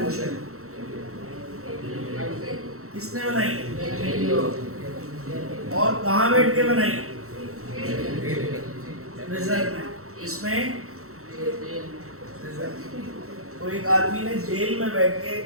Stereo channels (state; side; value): late; left; 0.63 ms